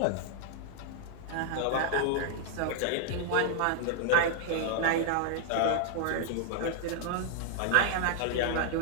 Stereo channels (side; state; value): both; different; correlation 0.00